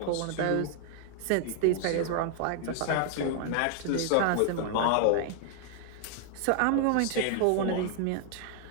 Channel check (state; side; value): different; both; correlation 0.00